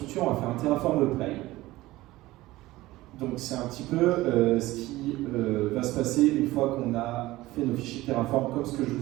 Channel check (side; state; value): left; quieter; 18.0 dB